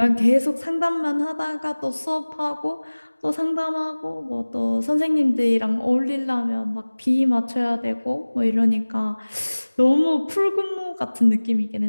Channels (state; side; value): inverted; both; correlation -1.00